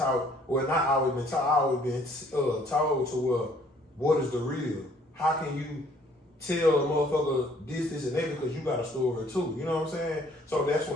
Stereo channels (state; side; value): normal; both; correlation 0.61